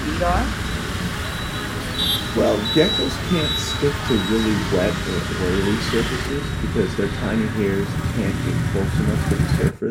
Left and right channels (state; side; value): identical; both; correlation 1.00